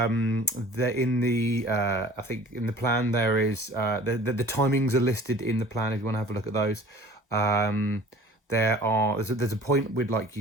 think in the plan there is the timings are listed in the plan if you want to have a look at those. There's a point we'd like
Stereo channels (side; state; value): both; normal; correlation 0.47